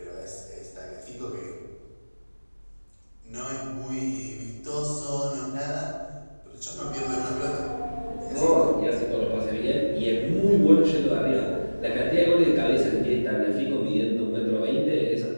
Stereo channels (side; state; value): both; inverted; correlation -1.00